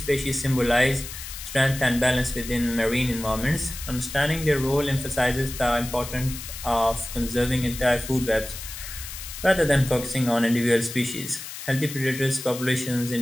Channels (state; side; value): noise; left; hiss, 10 dB below the sound